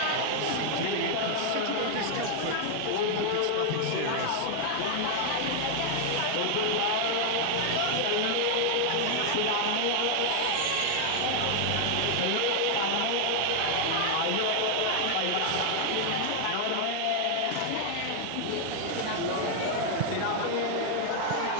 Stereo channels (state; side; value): different; both; correlation 0.00